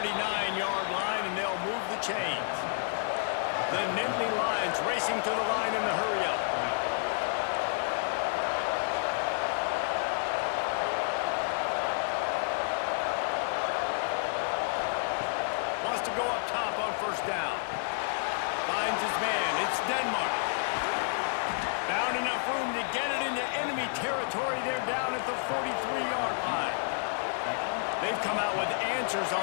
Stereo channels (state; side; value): silent; right; 58 dB below the other